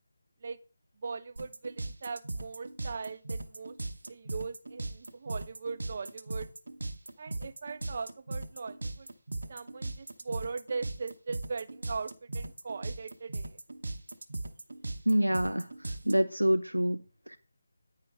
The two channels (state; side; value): inverted; both; correlation -0.98